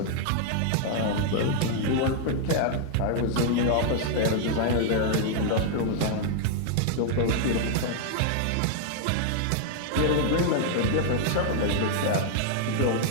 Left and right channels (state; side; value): different; both; correlation 0.00